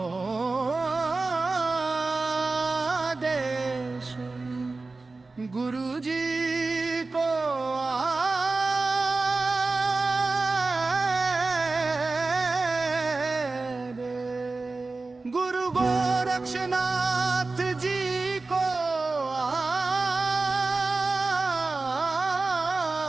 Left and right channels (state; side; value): quieter; left; 3.6 dB